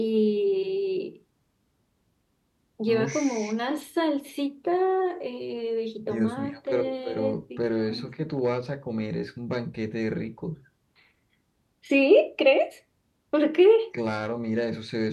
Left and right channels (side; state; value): both; identical; correlation 1.00